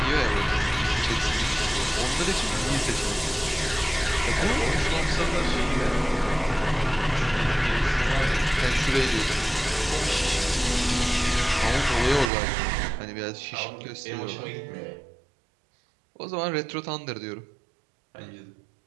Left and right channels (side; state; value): left; drops out; at 12.3 s